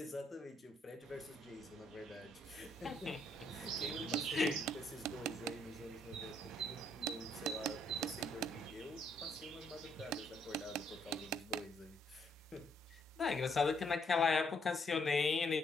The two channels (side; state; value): both; normal; correlation 0.71